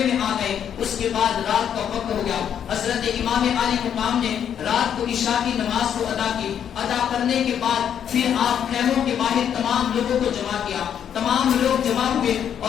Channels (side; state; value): right; quieter; 8.9 dB